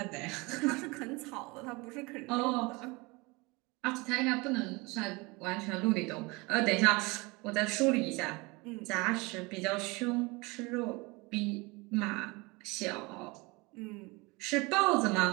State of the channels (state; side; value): quieter; left; 25.5 dB